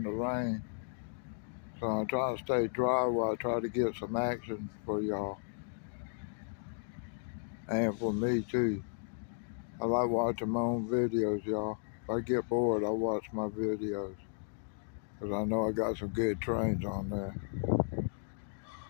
the rain. So I'm trying to stay dry while I try to get some action for y'all. And for me too. I like watching my own videos, y'all. If I get bored, I watch my videos. Because I know I got some good trains on there.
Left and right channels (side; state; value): right; silent; digital silence